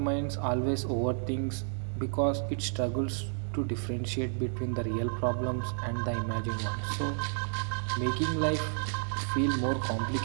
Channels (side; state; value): left; silent; digital silence